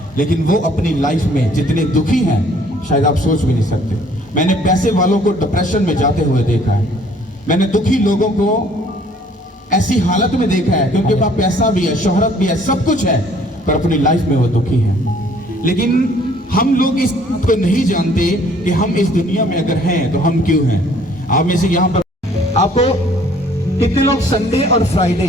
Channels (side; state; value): both; normal; correlation 0.58